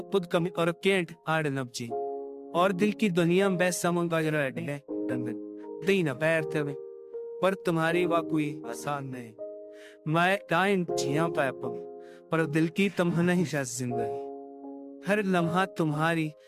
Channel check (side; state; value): both; identical; correlation 1.00